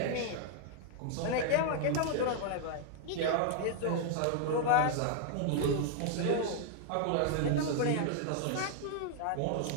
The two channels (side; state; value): both; different; correlation 0.00